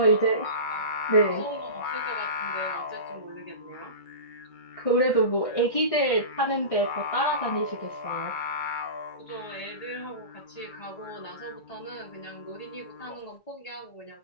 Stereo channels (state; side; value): late; right; 1.6 ms